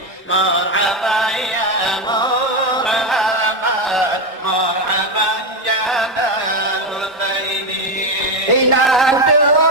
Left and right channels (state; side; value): normal; both; correlation 0.09